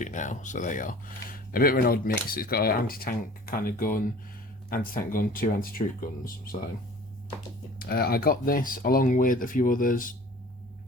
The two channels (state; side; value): normal; both; correlation 0.46